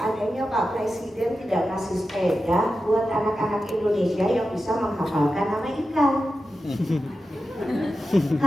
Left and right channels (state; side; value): normal; both; correlation 0.91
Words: Pak Presiden tidak kasih sepeda buat anak-anak Indonesia yang bisa menghafalkan nama ikan.